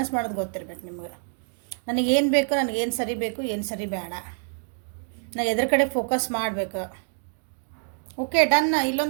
ಮಾಡೋದು ಗೊತ್ತಿರ್ಬೇಕು ನಿಮ್ಗೆ. ನನಗೇನು ಬೇಕು, ನನಗೇನು ಸರಿ ಬೇಕು, ಏನು ಸರಿ ಬೇಡ, ನಾನು ಎದ್ರ ಕಡೆ ಫೋಕಸ್ ಮಾಡಬೇಕು. Okay done.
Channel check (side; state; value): left; silent; digital silence